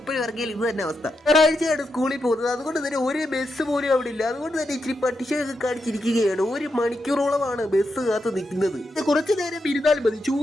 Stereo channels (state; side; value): normal; both; correlation 0.85